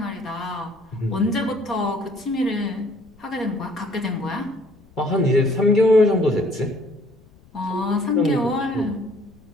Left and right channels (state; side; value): noise; left; rumble, 27 dB below the sound